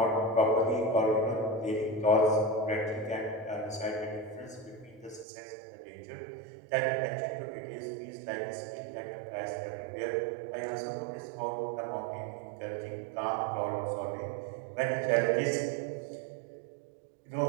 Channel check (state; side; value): drops out; left; at 5.2 s